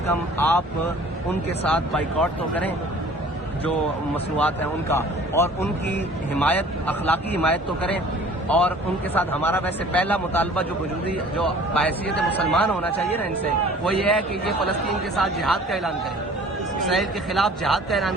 کم آپ ان کے ساتھ بائیکاٹ تو کریں جو مصنوعات ہیں ان کا، اور ان کی حمایت، اخلاقی حمایت تو کریں، اور ان کے ساتھ ہمارا ویسے پہلا مطالبہ جو بحیثیت مسلمان ہونا چاہیے نا ان سے، وہ یہ ہے کہ یہ فلسطین کے ساتھ جہاد کا اعلان کریں، اسرائیل کے خلاف جہاد کا اعلان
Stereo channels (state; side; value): normal; both; correlation 0.49